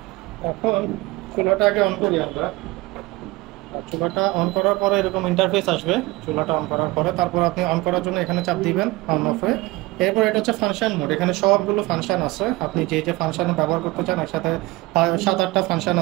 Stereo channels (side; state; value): left; quieter; 20.9 dB